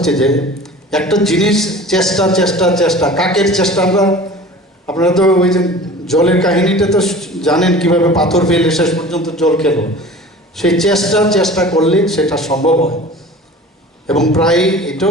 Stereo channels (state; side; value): normal; both; correlation 0.41